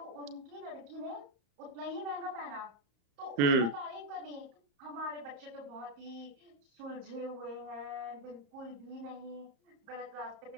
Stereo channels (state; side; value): late; left; 34 ms